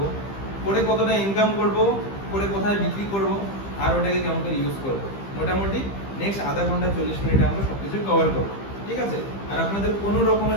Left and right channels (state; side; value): late; right; 15 ms